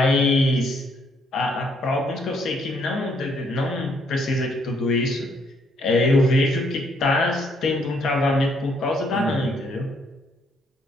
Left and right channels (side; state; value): both; normal; correlation 0.70